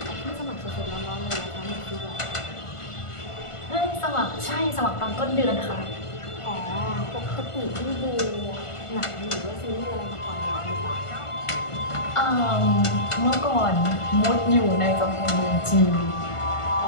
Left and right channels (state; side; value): late; right; 1.5 ms